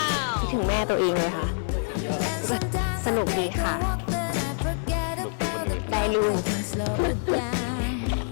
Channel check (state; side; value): silent; right; 61 dB below the other